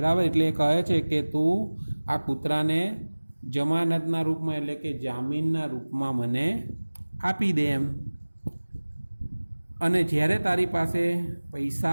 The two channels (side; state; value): both; inverted; correlation -1.00